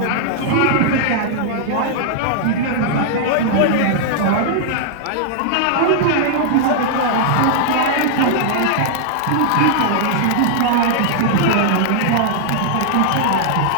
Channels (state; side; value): different; both; correlation -0.01